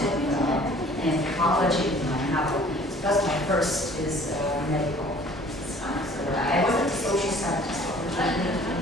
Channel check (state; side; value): normal; both; correlation 0.52